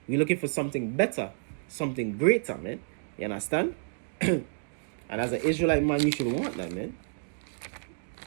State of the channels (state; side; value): silent; left; digital silence